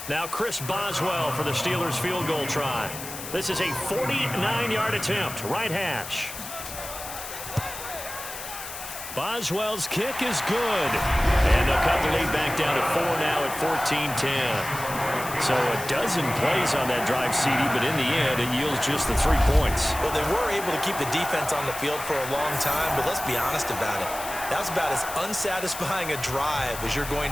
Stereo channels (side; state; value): left; noise; hiss, 10 dB below the sound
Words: Now Chris Boswell for the Steelers field goal try. This is a 49-yard attempt, right hash. Boswell's kick is good. And they'll cut the lead back down to 4 now at 14-10. So a dozen plays on that drive, CD, but in the end, it yields just the 3 points. Well, they were able to keep the defense on the field for a long time, but let's be honest about it. That was about as unsatisfying a drive as you're